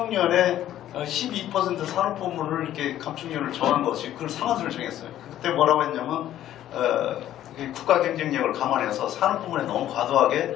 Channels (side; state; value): right; quieter; 12.3 dB